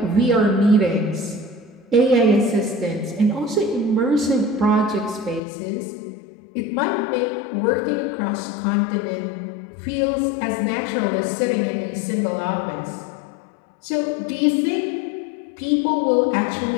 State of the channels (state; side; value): drops out; right; at 5.4 s